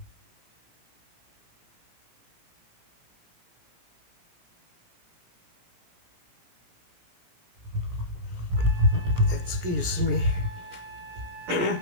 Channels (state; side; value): late; left; 17 ms